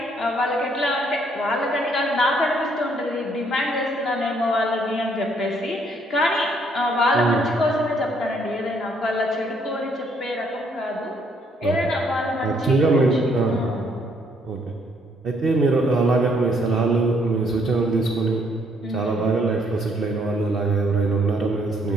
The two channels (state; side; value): normal; both; correlation 0.68